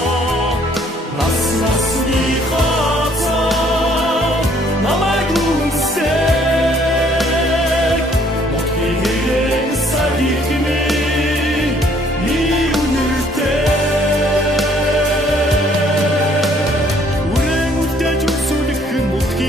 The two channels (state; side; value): normal; both; correlation 0.62